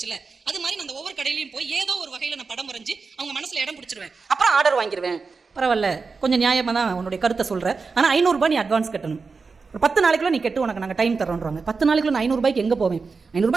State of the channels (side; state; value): left; quieter; 4.6 dB